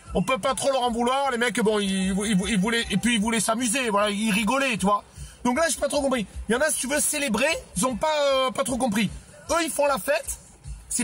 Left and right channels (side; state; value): both; identical; correlation 1.00